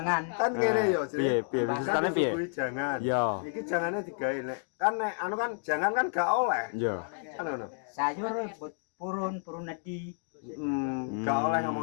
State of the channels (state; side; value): silent; right; 57 dB below the other